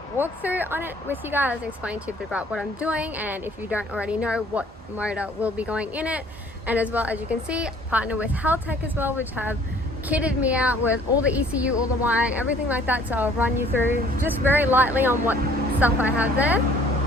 walkthrough on it with you guys, explain to you a bit about what I'm doing, and if you don't already know, what motor will be going in it. And as well, as you can see, partner with Haltech as well, which have kitted me out with all the ECU, all the wiring, everything like that. So I'll run you through just very lightly on what stuff I have there.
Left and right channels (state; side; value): normal; both; correlation 0.56